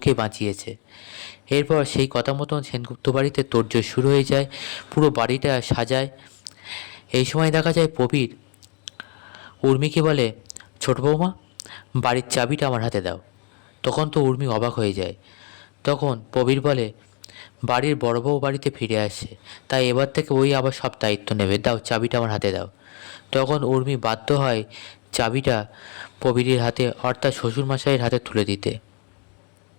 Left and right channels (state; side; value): quieter; right; 39.1 dB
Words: বাঁচিয়েছে। এরপর সেই কথা মতন সেনগুপ্ত বাড়িতে তোড়জোড় শুরু হয়ে যায়, পুরো বাড়িটা সাজায়। এই সময় দেখা যায় প্রবীর উর্মিকে বলে, ছোট বৌমা, বাড়ির চাবিটা আমার হাতে দাও। তখন তো উর্মি অবাক হয়ে যায়। তখন প্রবীর বলে, বাড়ির বড় বউ বাড়িতে ফিরে আসে, তাই এবার থেকে ওই আবার সব দায়িত্ব নেবে, দাও চাবিটা আমার হাতে দাও। তখন উর্মি বাধ্য হয় চাবিটা প্রবীরের হাতে, অর্থাৎ শ্বশুরমশাইয়ের হাতে তুলে দিতে।